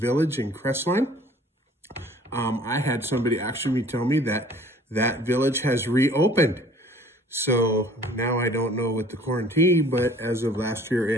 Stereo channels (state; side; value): normal; both; correlation 0.52